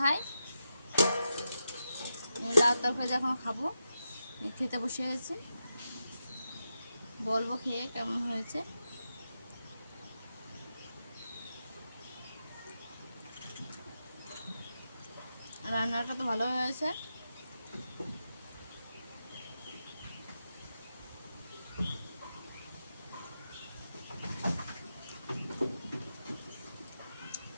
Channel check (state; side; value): inverted; both; correlation -0.88